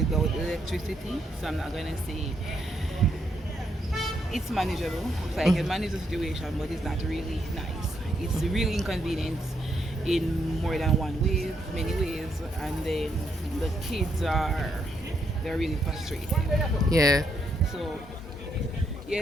electricity, so I'm not going to say it's manageable. So I can manage the situation, but it's not really nice. It's really inconvenient in more than one way, many ways, and then the kids they're really frustrated. Yeah, So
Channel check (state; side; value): normal; both; correlation 0.77